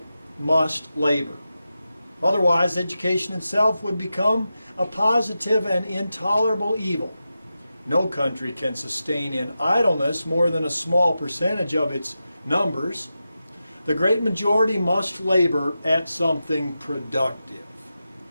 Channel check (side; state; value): both; inverted; correlation -0.91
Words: must labor. Otherwise, education itself would become a positive and intolerable evil. No country can sustain in idleness more than a small percentage of its numbers. The great majority must labor at something productive.